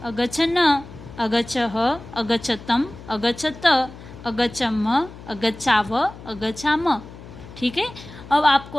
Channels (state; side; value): noise; left; hum, 16 dB below the sound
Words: अगच्छन, अगच्छह, अगच्छतम, अगच्छत, अगच्छम, अगच्छाव, अगच्छाम, ठीक है। अब आपको